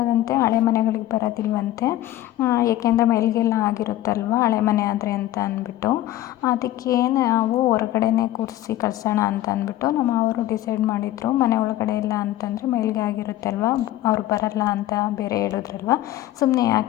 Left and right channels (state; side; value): quieter; right; 14.2 dB